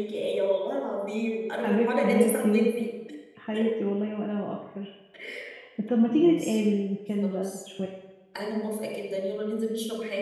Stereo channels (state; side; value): identical; both; correlation 1.00